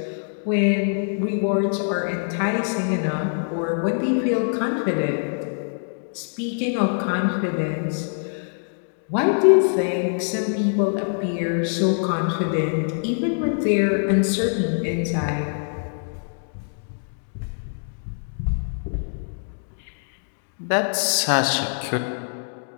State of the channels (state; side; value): silent; right; digital silence